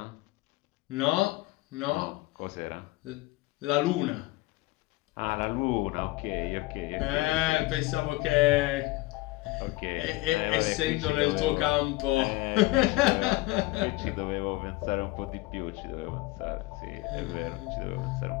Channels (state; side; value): quieter; right; 20.2 dB